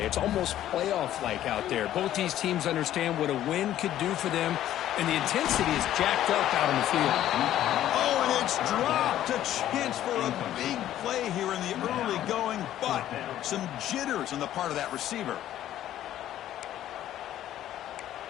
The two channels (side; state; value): right; quieter; 12.4 dB